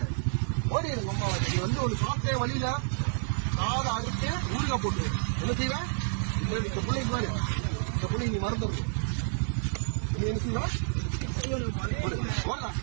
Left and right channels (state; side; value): silent; left; digital silence